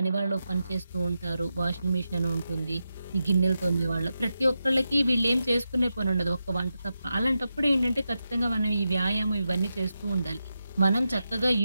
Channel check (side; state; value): both; inverted; correlation -0.89